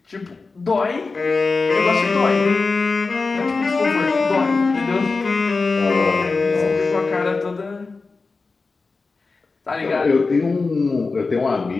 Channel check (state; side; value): quieter; right; 4.0 dB